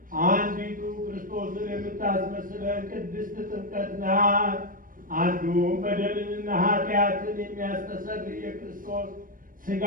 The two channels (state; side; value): late; left; 0.40 ms